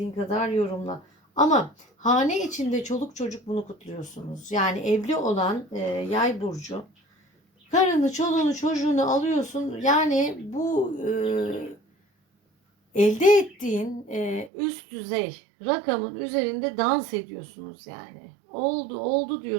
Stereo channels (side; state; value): left; drops out; at 14.5 s